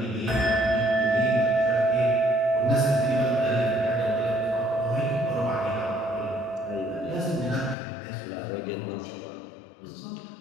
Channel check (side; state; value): right; drops out; at 7.8 s